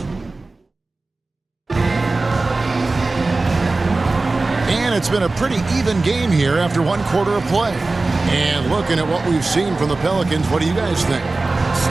And it's been a pretty even game here after 1 quarter of play. And looking at what we've seen from the Pelicans, what do you guys think?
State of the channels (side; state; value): left; quieter; 3.3 dB